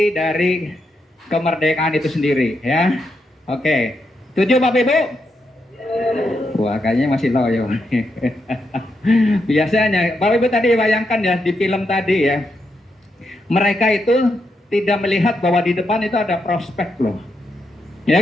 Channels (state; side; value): normal; both; correlation 0.82